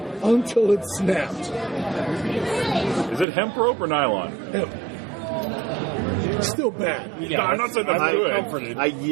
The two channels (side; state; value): left; drops out; at 3.2 s